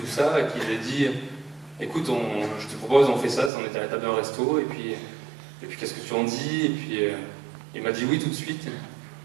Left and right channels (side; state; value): left; drops out; at 3.5 s